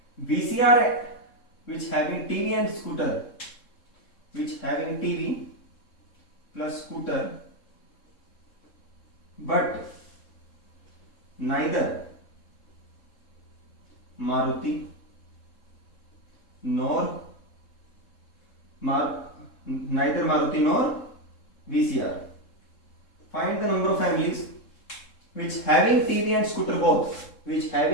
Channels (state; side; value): late; right; 3.7 ms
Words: VCR, which having TV and scooter, which having TV plus scooter but neither Maruti nor VCR. Find the number of families which having TV and scooter